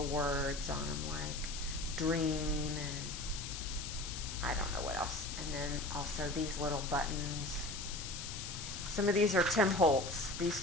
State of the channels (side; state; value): left; noise; hiss, 7 dB below the sound